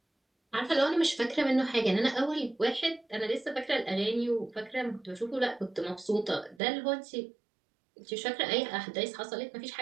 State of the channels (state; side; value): drops out; left; at 6.6 s